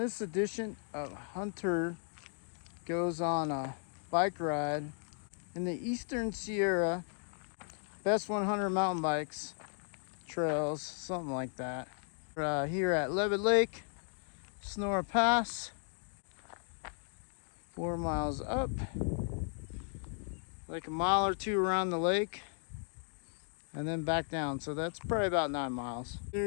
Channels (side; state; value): right; silent; 54 dB below the other